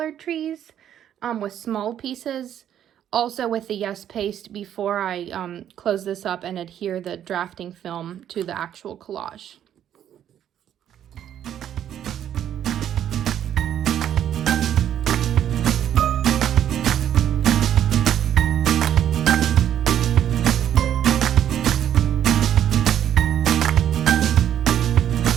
trees with small pieces, also with the Yes Paste before I close this up and adhere the drafting film to the actual collage.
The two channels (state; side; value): quieter; left; 10.4 dB